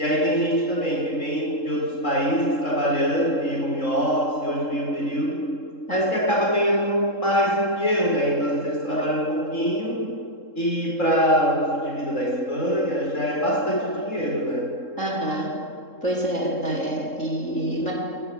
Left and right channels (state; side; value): late; right; 3.7 ms